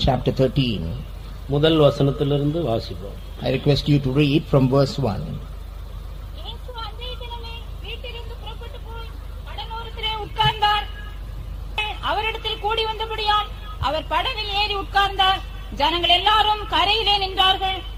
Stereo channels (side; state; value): both; identical; correlation 1.00